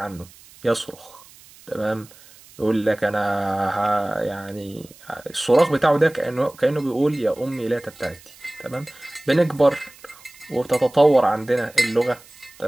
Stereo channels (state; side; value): noise; right; hiss, 23 dB below the sound